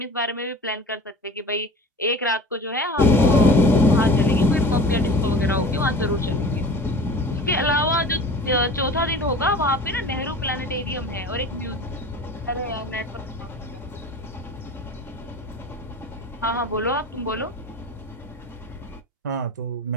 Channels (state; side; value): normal; both; correlation 0.38